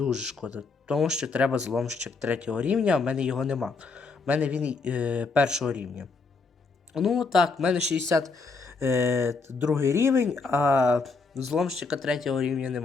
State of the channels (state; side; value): quieter; right; 4.3 dB